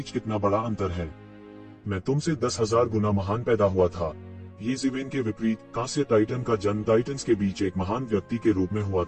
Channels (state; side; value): identical; both; correlation 1.00